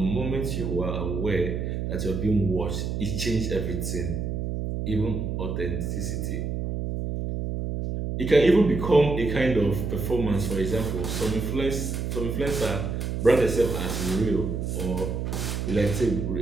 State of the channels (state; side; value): noise; right; hum, 2 dB below the sound